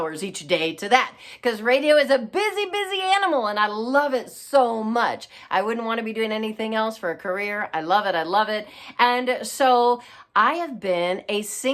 each day to that, because radio is a busy animal, and I love it so much. I wouldn't want to be doing anything else for a career. I love it. And so I have been a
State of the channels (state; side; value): identical; both; correlation 1.00